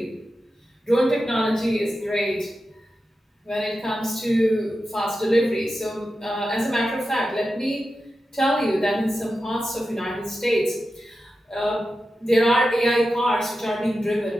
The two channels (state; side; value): normal; both; correlation 0.91